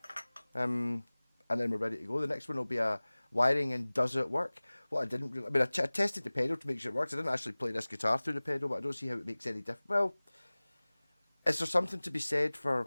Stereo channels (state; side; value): inverted; both; correlation -1.00